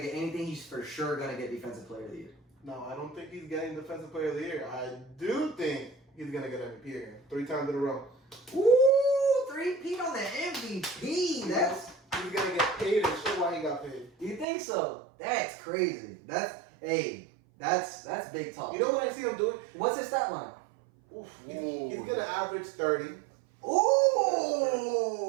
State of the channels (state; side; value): drops out; left; at 14.5 s